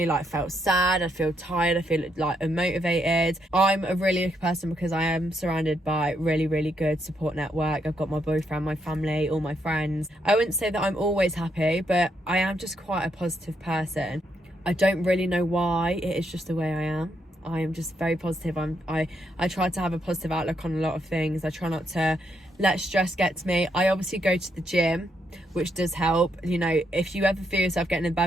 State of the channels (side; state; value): both; normal; correlation 0.77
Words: felt sad. I feel tired. I feel like unmotivated. I'm a really lucky person because I am surrounded by really, really good support network. I've got my boyfriend, my family, all my friends. I wouldn't say that I'm always happy, but I am just quite a positive person. I don't really know why. It is just the way I am. I am just very positive. I try to have a positive outlook on a lot of things. I try not to let stress get to me. I obviously go to the gym, which does help. You know, if you ever feel yourself getting in a